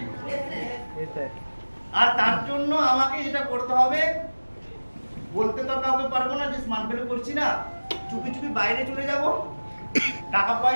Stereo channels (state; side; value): inverted; both; correlation -1.00